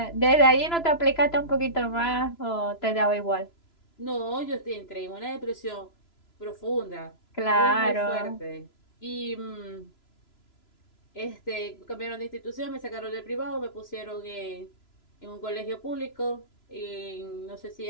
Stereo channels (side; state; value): right; late; 3.0 ms